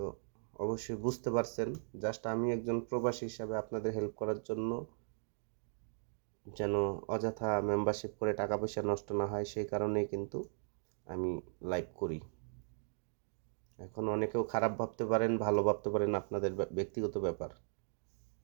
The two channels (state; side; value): silent; left; digital silence